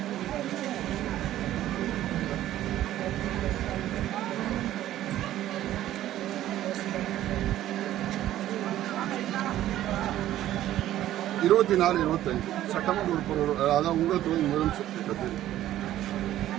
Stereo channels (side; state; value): left; quieter; 13.3 dB